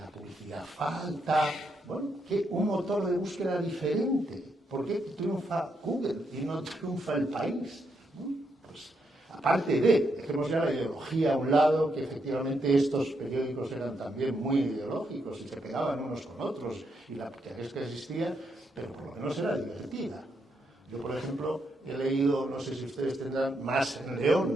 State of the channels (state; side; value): normal; both; correlation 0.79